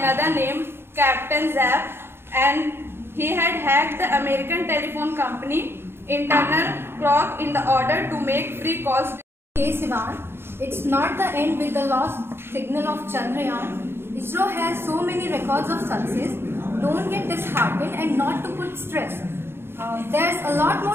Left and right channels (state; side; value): late; left; 0.11 ms